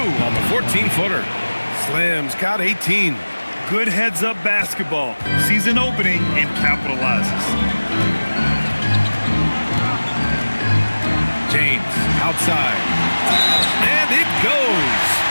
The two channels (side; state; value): both; inverted; correlation -1.00